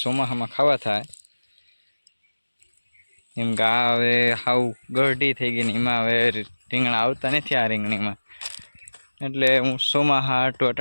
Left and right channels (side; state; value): both; inverted; correlation -1.00